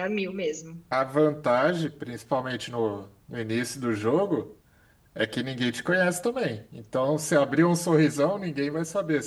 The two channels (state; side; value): identical; both; correlation 1.00